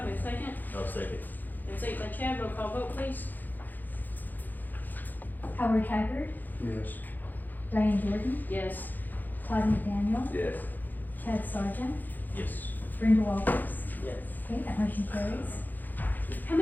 we have a second? I'll second. We have a second by Chad, roll call vote, please. Howard Haggard, Yes. Diane Jordan, Yes. Todd McDaniel, Yes. Chad Sargent, Yes. Brenda Walters. Yes. Okay, that motion carries. How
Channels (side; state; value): right; late; 0.086 ms